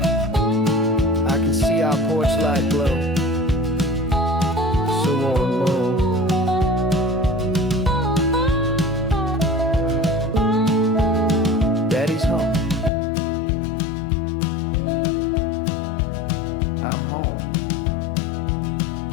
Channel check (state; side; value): drops out; right; at 12.9 s